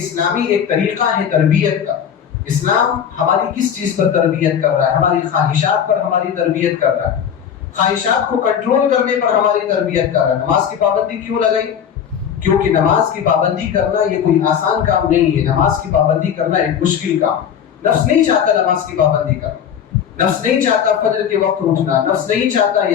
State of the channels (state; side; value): quieter; right; 8.4 dB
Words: ایک طریقہ ہے تربیت کا۔ اسلام ہماری کس چیز پر تربیت کر رہا ہے؟ ہماری خواہشات پر ہماری تربیت کر رہا ہے، خواہشات کو کنٹرول کرنے پر ہماری تربیت کر رہا ہے۔ نماز کی پابندی کیوں لگائی؟ کیونکہ نماز کی پابندی کرنا یہ کوئی آسان کام نہیں ہے، نماز کی پابندی کرنا ایک مشکل کام۔ نفس نہیں چاہتا نماز کی پابندی کرنا، نفس نہیں چاہتا فجر کے وقت اٹھنا، نفس نہیں چاہتا